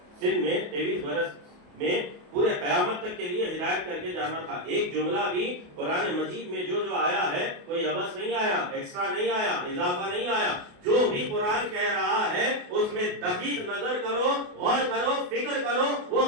سن میں، 23 برس میں پورے قیامت تک کے لیے ہدایت کر کے جانا تھا. ایک جملہ بھی قرآن مجید میں جو آیا ہے کوئی عبث نہیں آیا، ایکسٹرا نہیں آیا، اضافہ نہیں آیا. جو بھی قرآن کہہ رہا ہے اس میں دقیق نظر کرو، غور کرو، فکر کرو، وہ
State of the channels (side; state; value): left; late; 28 ms